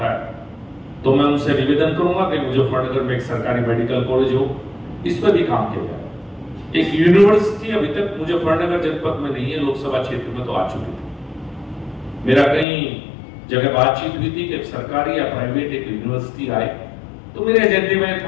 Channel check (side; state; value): right; drops out; at 12.7 s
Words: है, तो मैं उनसे निवेदन करूंगा कि मुजफ्फरनगर में एक सरकारी मेडिकल कॉलेज हो, इस पर भी काम किया जाए। एक यूनिवर्सिटी अभी तक मुजफ्फरनगर जनपद में नहीं है, लोकसभा क्षेत्र में तो आ चुकी थी। मेरा कहीं जगह बातचीत हुई थी कि सरकारी या प्राइवेट एक यूनिवर्सिटी आए, तो मेरे एजेंडे में